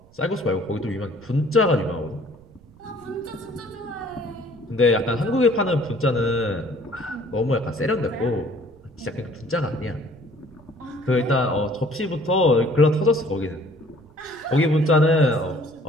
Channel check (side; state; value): right; noise; rumble, 26 dB below the sound